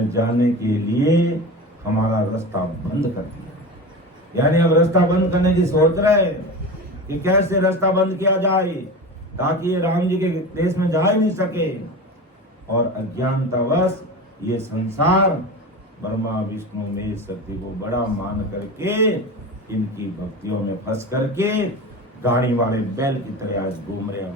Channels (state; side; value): normal; both; correlation 0.29